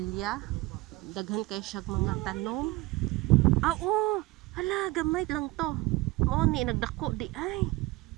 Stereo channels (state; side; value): quieter; left; 20.5 dB